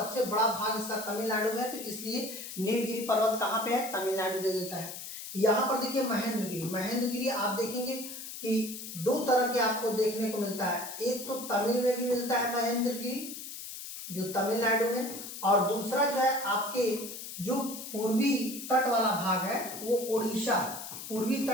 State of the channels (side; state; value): left; noise; hiss, 10 dB below the sound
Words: बड़ा भाग इसका तमिलनाडु में है, तो इसलिए नीलगिरी पर्वत कहाँ पे है? तमिलनाडु दे देता है। यहाँ पर देखिए महेंद्रगिरी। महेंद्रगिरी आप देखेंगे कि 2 तरह के आपको देखने को मिलता है। एक तो तमिल में भी मिलता है महेंद्रगिरी जो तमिलनाडु में, और दूसरा जो है आपके जो पूर्वी तट वाला भाग है वो उड़ीसा, पूर्वी